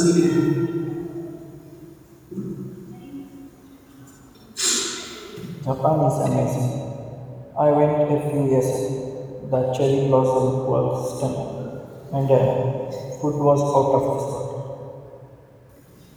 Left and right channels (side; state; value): both; identical; correlation 1.00